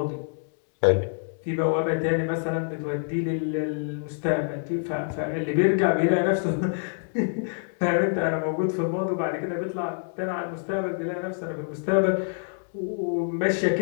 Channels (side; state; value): right; silent; digital silence